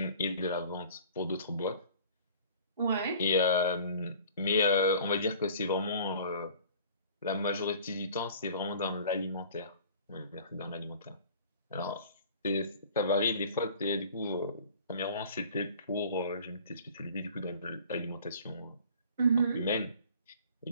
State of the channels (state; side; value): inverted; both; correlation -0.47